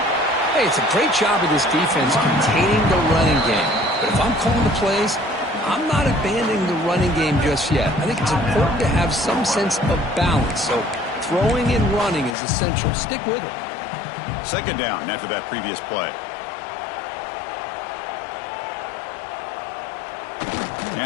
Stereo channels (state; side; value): drops out; right; at 12.4 s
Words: Hey, it's a great job of this defense containing the running game. But if I'm calling the plays, I'm not abandoning the running game just yet. I think it's important to have some sense of balance. So throwing and running is essential. Stick with it. Second down after that previous play.